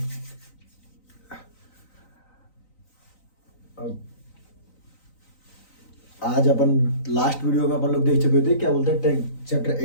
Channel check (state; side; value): late; right; 3.9 ms